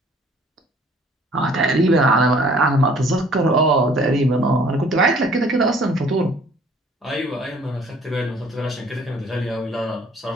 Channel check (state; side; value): normal; both; correlation 0.55